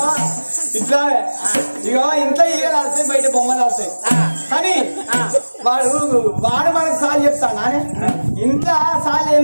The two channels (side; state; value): both; inverted; correlation -1.00